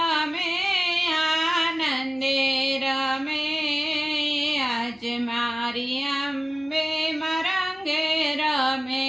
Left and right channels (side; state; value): both; normal; correlation 0.97